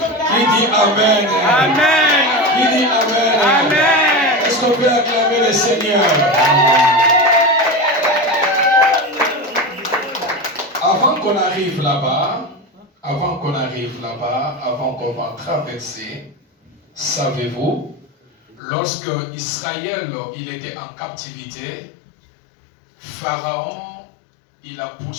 Qui dit amen? Amen. Qui dit amen? Amen. Est-ce qu'on peut acclamer le Seigneur? Avant qu'on arrive là-bas, avant qu'on va traverser, savez-vous, lorsque Israël il était en captivité, Pharaon il a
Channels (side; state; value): right; drops out; at 18.6 s